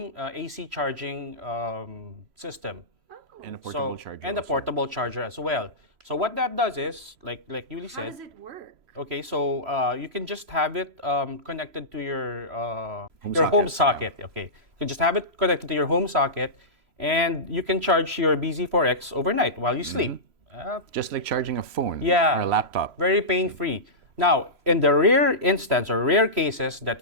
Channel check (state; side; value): late; left; 3.0 ms